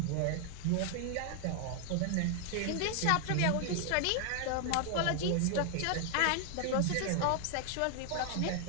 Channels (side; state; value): both; different; correlation 0.00